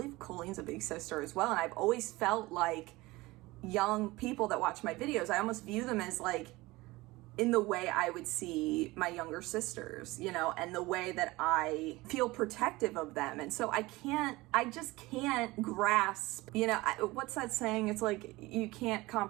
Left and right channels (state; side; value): quieter; left; 20.7 dB